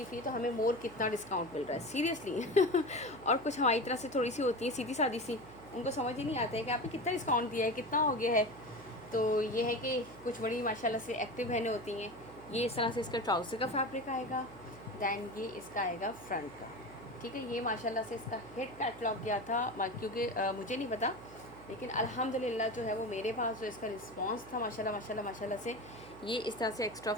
फ्री, तो हमें मोर कितना डिस्काउंट मिल रहा है सीरियसली। और कुछ हमारी तरह से थोड़ी सी होती है सीधी सादी सी, उनको समझ ही नहीं आता है कि आपने कितना डिस्काउंट दिया है, कितना हो गया है। तो ये है कि कुछ बड़ी माशाल्लाह से एक्टिव बहनें होती हैं। ये इस तरह से इसका ट्राउज़र का फैब्रिक आएगा, दैन ये इसका आएगा फ्रंट का, ठीक है। ये माशाल्लाह से इसका हिट कैटलॉग गया था, क्योंकि मुझे नहीं पता, लेकिन अल्हम्दुलिल्लाह जो है वो मेरे पास जो इसका रिस्पांस था माशाल्लाह माशाल्लाह माशाल्लाह से। ये इस तरह से एक्स्ट्रा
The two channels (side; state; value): right; noise; hum, 18 dB below the sound